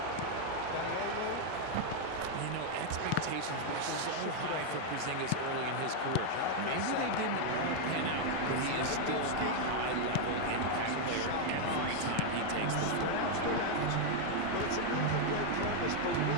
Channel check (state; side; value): different; both; correlation 0.00